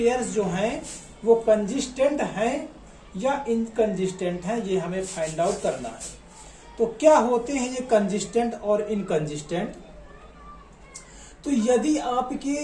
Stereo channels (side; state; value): both; identical; correlation 1.00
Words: जो हैं वो कंसिस्टेंट हैं या इनकंसिस्टेंट हैं, ये हमें फाइंड आउट करना है। तो क्या होते हैं ये कंसिस्टेंट और इनकंसिस्टेंट। तो यदि